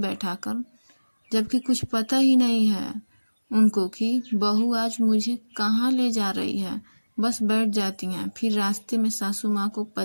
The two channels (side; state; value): both; inverted; correlation -1.00